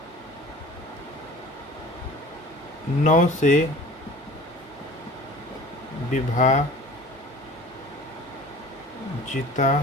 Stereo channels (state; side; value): normal; both; correlation 0.44